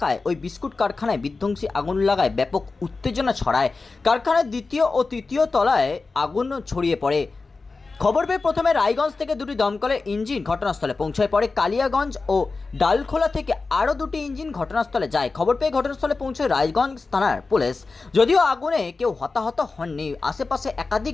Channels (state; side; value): quieter; right; 4.0 dB